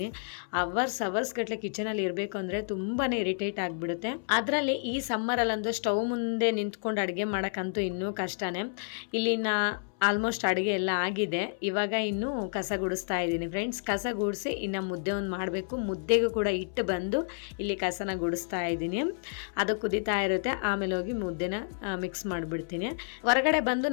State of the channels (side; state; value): right; silent; 58 dB below the other